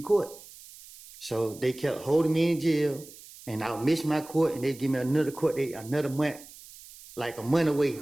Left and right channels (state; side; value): noise; right; hiss, 19 dB below the sound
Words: court. So they kept holding me in jail, and I would miss my court, and they'd give me another court date, another month, like a month away.